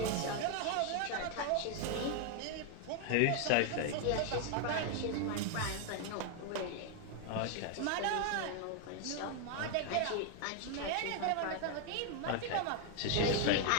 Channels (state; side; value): different; both; correlation 0.00